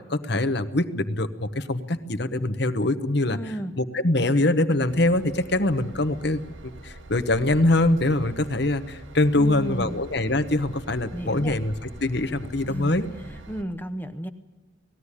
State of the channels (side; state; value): both; normal; correlation 0.52